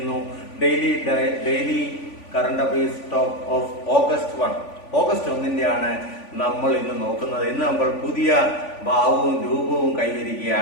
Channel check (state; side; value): late; right; 3.5 ms